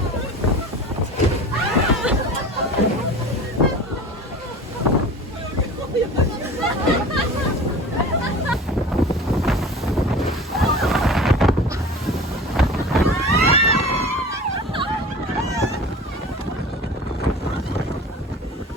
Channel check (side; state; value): both; normal; correlation 0.38